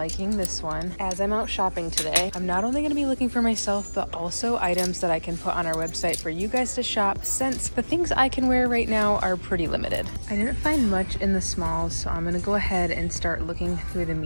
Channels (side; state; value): both; inverted; correlation -1.00